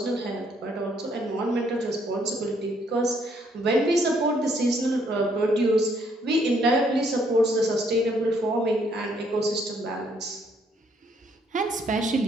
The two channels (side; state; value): both; normal; correlation 0.69